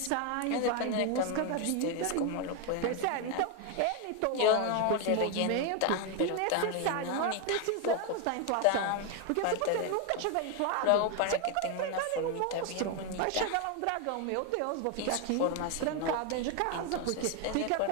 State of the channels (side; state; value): both; different; correlation 0.01